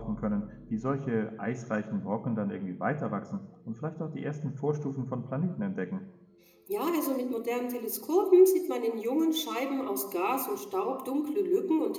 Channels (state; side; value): identical; both; correlation 1.00